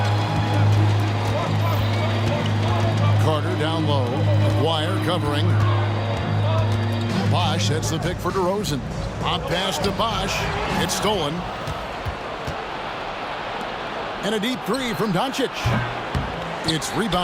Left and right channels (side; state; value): both; identical; correlation 1.00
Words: Carter down low. Dwyer covering. Bosch sets the pick for DeRozan. On pass to Bosch. It's stolen. And a deep 3 from Doncic. It's